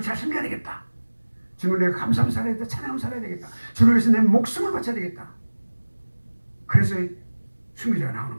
잘 섬겨야 되겠다. 주님을 내가 감사하며 살아야 되겠다. 찬양하며 살아야 되겠다. 주를 위해서 내 목숨을 바쳐야 되겠다. 그래서 순교자가 나오는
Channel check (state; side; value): inverted; both; correlation -1.00